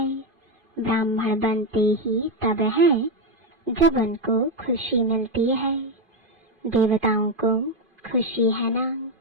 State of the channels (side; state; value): left; late; 2.5 ms